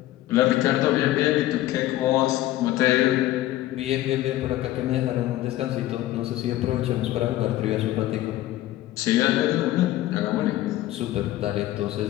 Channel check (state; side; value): quieter; right; 15.2 dB